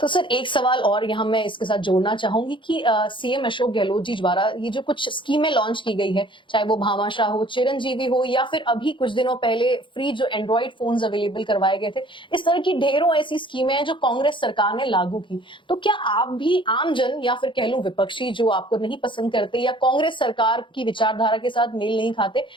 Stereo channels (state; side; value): late; right; 0.24 ms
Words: सर एक सवाल और यहाँ मैं इसके साथ जोड़ना चाहूंगी कि सीएम अशोक गहलोत जी द्वारा ये जो कुछ स्कीमें लॉन्च की गई है, चाहे वो भामाशाह हो, चिरंजीवी हो, या फिर अभी कुछ दिनों पहले फ्री जो एंड्रॉइड फोन्स अवेलेबल करवाए गए थे, इस तरह की ढेरों ऐसी स्कीमें हैं जो कांग्रेस सरकार ने लागू की। तो क्या आप भी आम जन या फिर कह लूं विपक्षी जो आपको नहीं पसंद करते या कांग्रेस सरकार की विचारधारा के साथ मेल नहीं खाते,